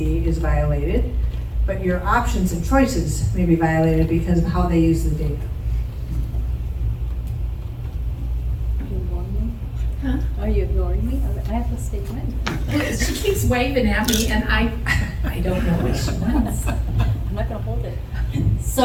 is violated, but your options and choices may be violated because of how they use the data. Huh? Are you ignoring me? I have a statement. She keeps waving at me and I don't know what she wants. I'm not gonna hold it.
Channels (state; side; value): identical; both; correlation 1.00